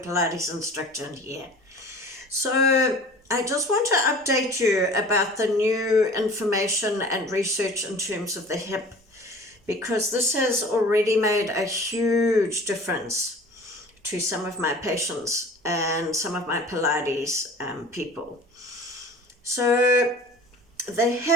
Pilates instructor here. So I just want to update you about the new information and research in terms of the hip, because this has already made a huge difference to some of my patients and some of my Pilates people. So the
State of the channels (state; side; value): normal; both; correlation 0.43